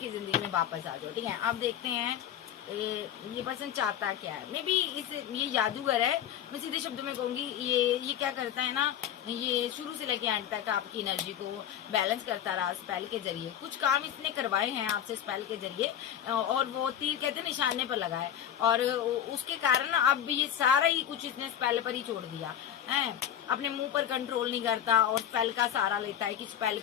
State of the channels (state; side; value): quieter; right; 10.2 dB